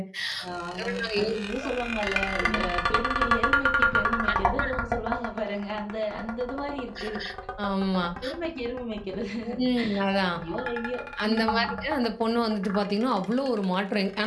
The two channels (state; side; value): identical; both; correlation 1.00